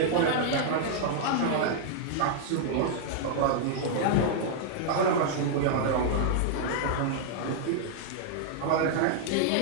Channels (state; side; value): different; both; correlation -0.01